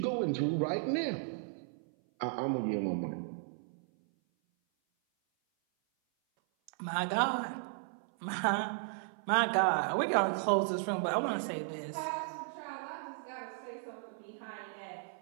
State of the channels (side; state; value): left; silent; 54 dB below the other